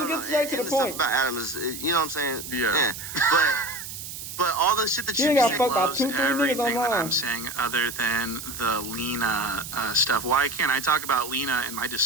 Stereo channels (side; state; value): right; noise; hiss, 9 dB below the sound